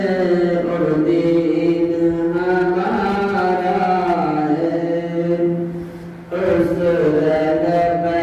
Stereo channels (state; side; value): identical; both; correlation 1.00